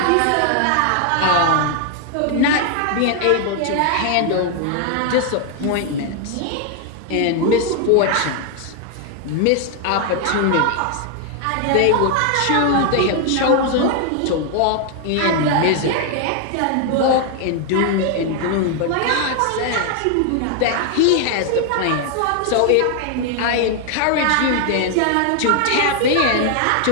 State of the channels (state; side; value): different; both; correlation 0.00